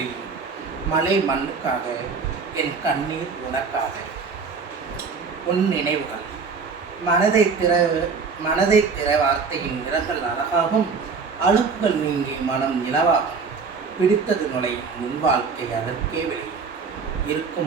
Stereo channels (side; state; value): left; quieter; 5.1 dB